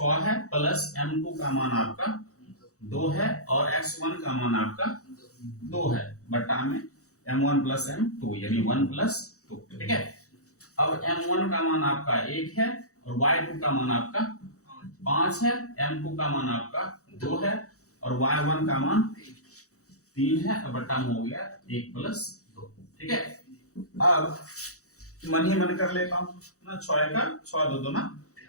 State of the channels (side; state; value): right; late; 0.65 ms